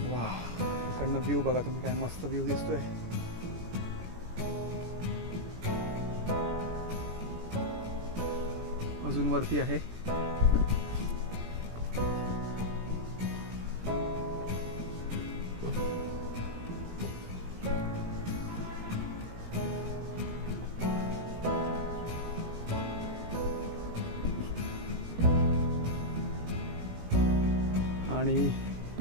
वा, इकडनं व्ह्यू बघा तुम्ही, काय मस्त व्ह्यू दिसतोय. अजून वरती आहे. आणि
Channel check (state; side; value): late; left; 17 ms